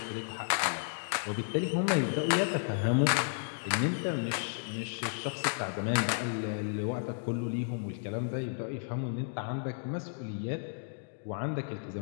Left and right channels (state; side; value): silent; right; digital silence